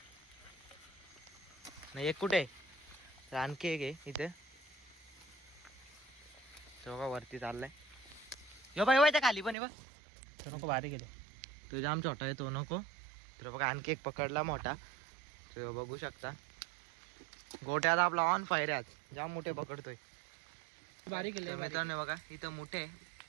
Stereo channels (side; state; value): left; drops out; at 9.6 s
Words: नाही एक कुठे. तर आणखी एक आहे इथे. तो बघा वरती चाललाय. यो बाई त्या खाली पण आहे बघ. नको भारी गेले. तो जाम छोटा आहे तो नको. तर बघा आणखी एक पकडला मोठा. तो बघू शकता गोट्यात आपला ऑन फायर आहे. जाम मोठे पकडतोय. तर मित्रांनो बघा इथं मोठे